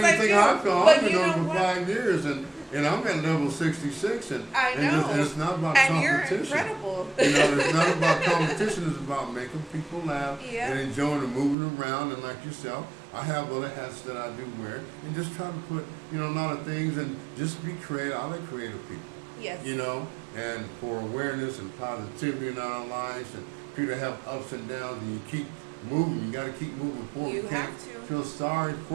think I feel? I've been on for 5 years, and I'm at level 66, and I know. And it's not about and competition. You're incredible. It's not about competition. It's about making people laugh and enjoying and moving around. And like yourself, I have other hats that I do wear, and just try to put a lot of things, and just be creative. I like creative people. Yes. And for awareness and positivity in our lives, and people have ups and downs, and you keep moving. You got to keep moving forward. You can't feel sorry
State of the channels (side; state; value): left; drops out; at 11.6 s